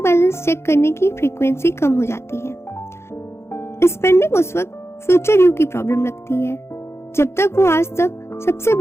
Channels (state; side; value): late; right; 0.13 ms